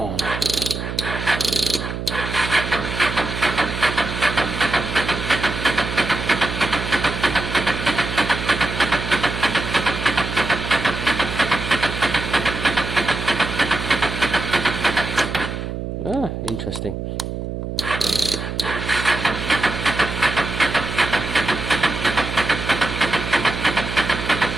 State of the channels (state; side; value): noise; right; hum, 5 dB below the sound